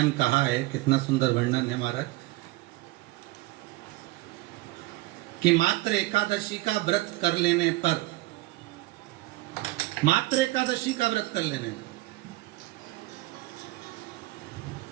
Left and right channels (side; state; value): left; quieter; 19.6 dB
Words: कहा है, कितना सुंदर वर्णन है महाराज कि मात्र एकादशी का व्रत कर लेने पर, मात्र एकादशी का व्रत कर लेने पर